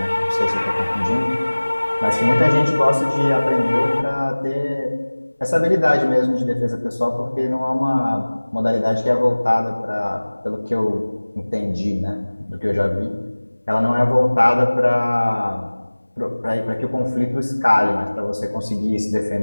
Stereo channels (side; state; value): both; inverted; correlation -1.00